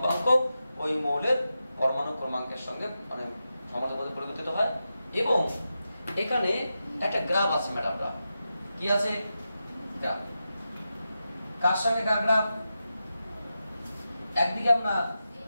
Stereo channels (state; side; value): inverted; both; correlation -0.90